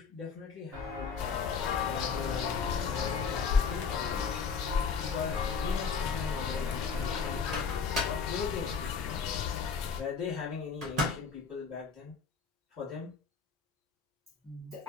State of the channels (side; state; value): right; quieter; 5.6 dB